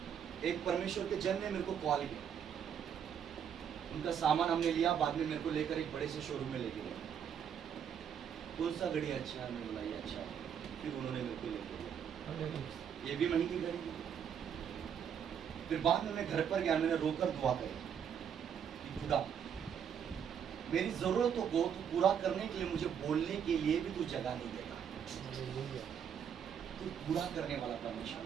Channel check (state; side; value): quieter; left; 8.1 dB